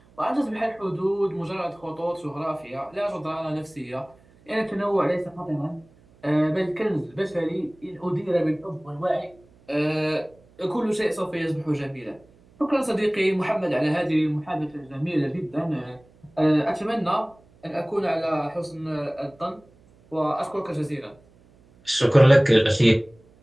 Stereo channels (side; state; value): right; noise; hum, 29 dB below the sound